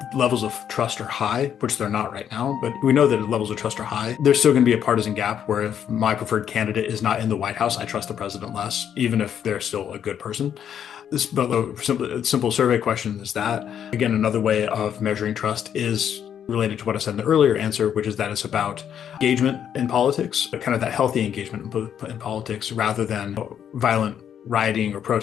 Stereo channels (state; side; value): quieter; right; 9.0 dB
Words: levels of trust are high, which they're not right now, but we know that levels of trust are high, there's still going to be a partisan gap where if my preferred candidate is not in the White House, I trust the president less, even if they're still a good person. But the simple survey question is that. Again, another way of measuring trust is related to what I said in the earlier answer, which is that it's about engagement in politics, kind of that healthy engagement in politics, rather than violent rioting or